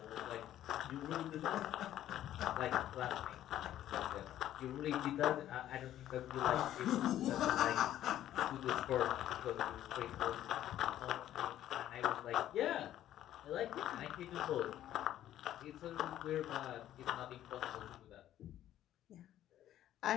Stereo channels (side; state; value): right; quieter; 12.4 dB